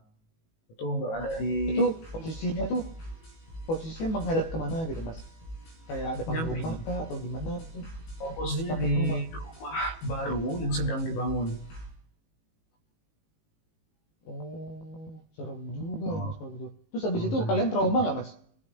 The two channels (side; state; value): right; late; 18 ms